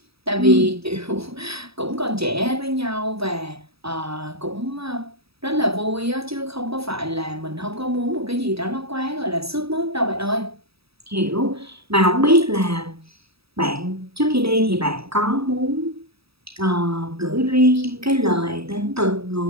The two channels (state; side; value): late; left; 0.77 ms